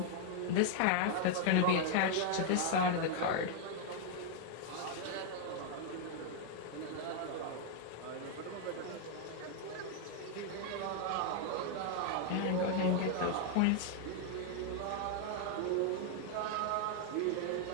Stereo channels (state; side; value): different; both; correlation 0.00